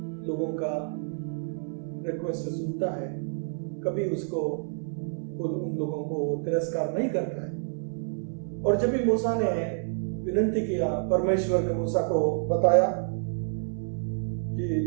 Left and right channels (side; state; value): left; silent; 59 dB below the other